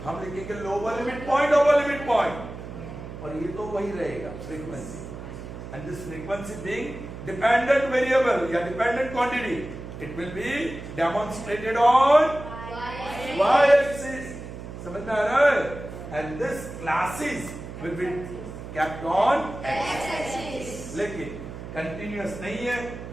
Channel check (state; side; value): noise; right; hum, 11 dB below the sound